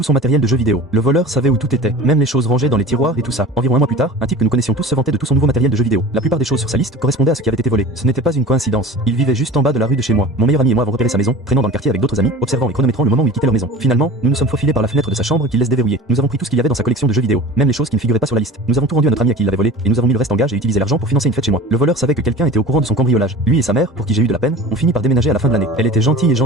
son matériel de jeux vidéo. Le voleur savait où tout était, même les choses rangées dans les tiroirs et tout ça. Environ un mois plus tard, un type que nous connaissions tous se vantait de tout son nouveau matériel de jeux vidéo. La plupart des choses sur sa liste correspondaient à ce qui avait été volé. Ce n'était pas une coïncidence. Il vivait juste en bas de la rue de chez moi. Mon meilleur ami et moi avons repéré sa maison, traînant dans le quartier avec d'autres amis, observant et chronométrant le moment où il quittait leur maison. Finalement, nous nous sommes faufilés par la fenêtre de sa chambre qu'il laisse déverrouiller. Nous avons pris tout ce qu'il y avait dans sa collection de jeux vidéo, même les choses qui ne figuraient pas sur la liste. Nous avons tout rendu à notre ami à qui il l'avait volé et nous avons mis le reste en gage et utilisé l'argent pour financer une fête chez moi. Le voleur savait que quelqu'un était au courant de son cambriolage. Lui et sa mère, pour qui j'ai eu de la peine, ont fini par déménager à la fin de l'année. Elle était gentille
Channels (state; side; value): normal; both; correlation 0.38